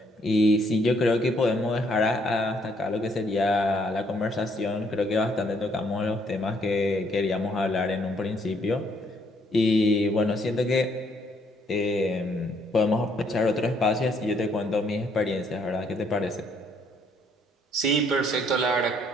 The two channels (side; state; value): both; normal; correlation 0.68